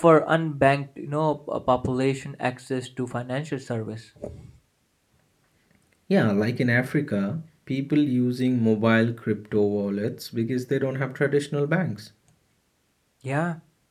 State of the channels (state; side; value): identical; both; correlation 1.00